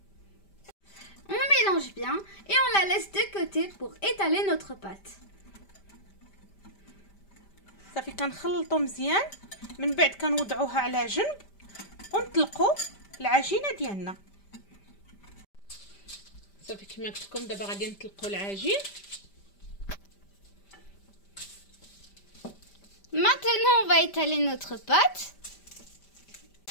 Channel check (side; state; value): right; late; 5.1 ms